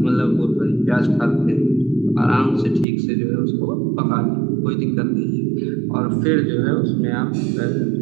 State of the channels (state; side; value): drops out; left; at 2.9 s